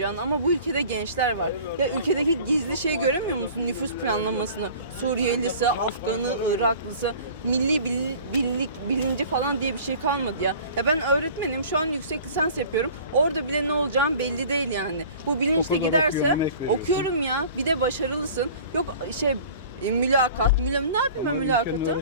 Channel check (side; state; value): both; inverted; correlation -0.45